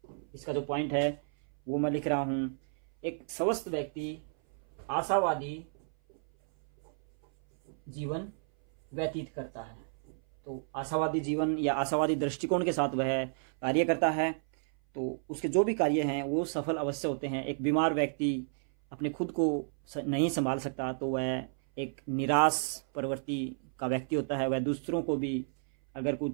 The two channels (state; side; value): silent; left; 57 dB below the other